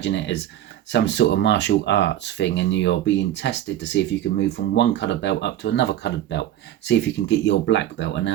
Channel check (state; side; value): quieter; left; 12.2 dB